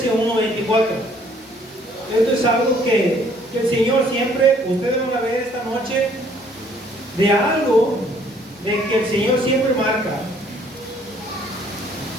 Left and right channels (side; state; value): both; normal; correlation 0.61